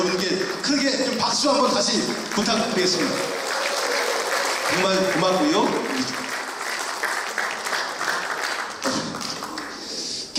크게 좀 박수 한번 다시 부탁드리겠습니다. 정말 고맙고요.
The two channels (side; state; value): both; identical; correlation 1.00